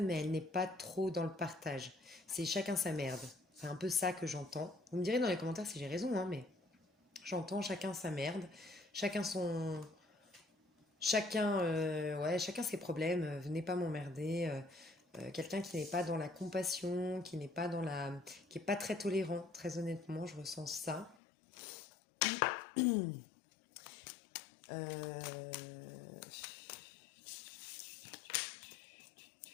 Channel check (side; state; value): right; drops out; at 21.2 s